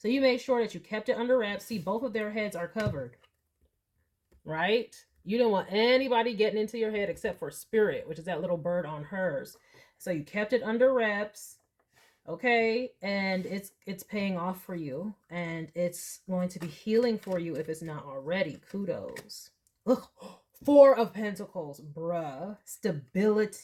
you made sure that you kept it under wraps. See, both of their heads are covered, right? You don't want anybody getting into your head except for Spirit, which is that little bird on hers. So you kept it under wraps. Okay, and it's paying off for you, and it's going to be healing for you if it's not already. Kudos. Ugh. 4 of Pentacles, bruh.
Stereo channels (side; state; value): both; identical; correlation 1.00